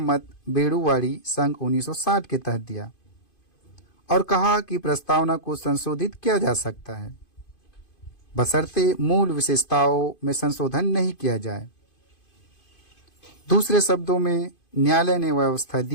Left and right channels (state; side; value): late; right; 2.5 ms